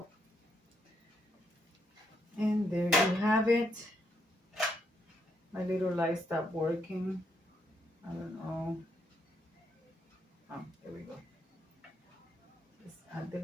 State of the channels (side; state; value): both; normal; correlation 0.77